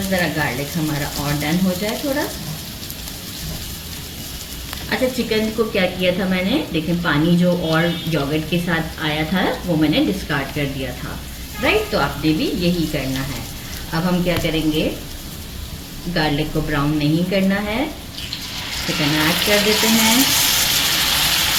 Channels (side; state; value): both; identical; correlation 1.00